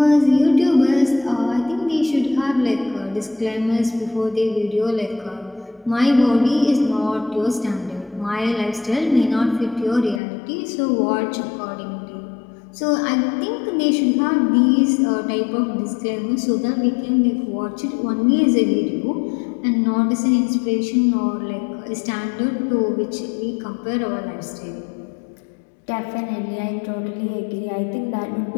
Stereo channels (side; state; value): right; drops out; at 10.2 s